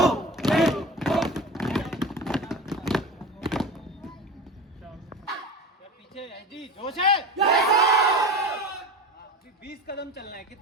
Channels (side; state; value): both; normal; correlation 0.31